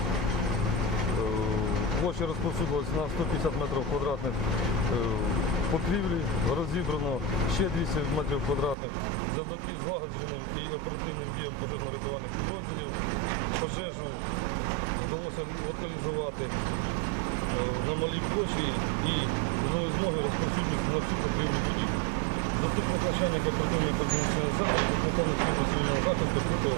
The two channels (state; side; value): drops out; left; at 8.8 s